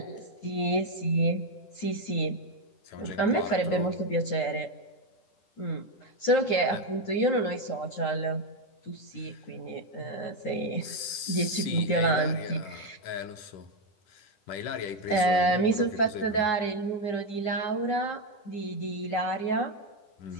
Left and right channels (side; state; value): right; late; 10 ms